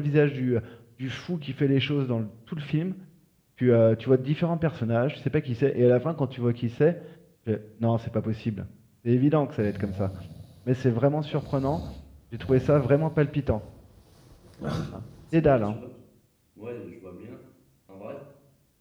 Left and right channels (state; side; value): identical; both; correlation 1.00